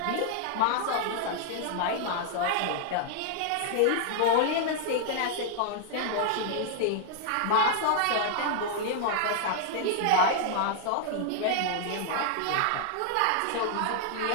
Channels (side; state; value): both; different; correlation 0.00